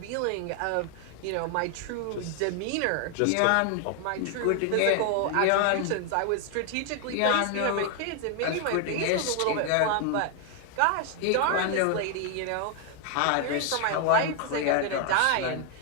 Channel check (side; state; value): both; different; correlation 0.00